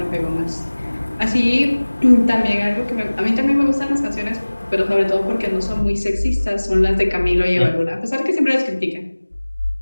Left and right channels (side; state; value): both; inverted; correlation -1.00